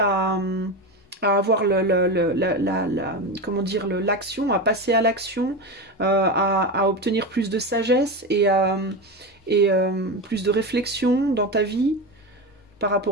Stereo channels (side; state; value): both; normal; correlation 0.20